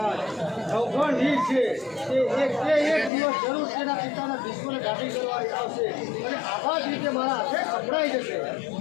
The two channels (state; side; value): drops out; right; at 3.1 s